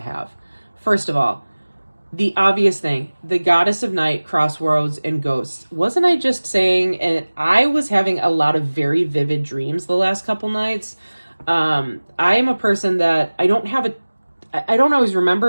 have. First of all, the obvious thing, the Goddess of Night, Crossroads, and Ghosts. Wasn't I just saying, and I was having a lot of very vivid dreams the last couple nights. I am a person that I don't always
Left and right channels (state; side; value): inverted; both; correlation -1.00